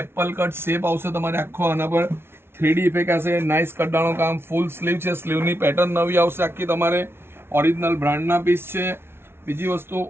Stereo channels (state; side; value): late; left; 0.12 ms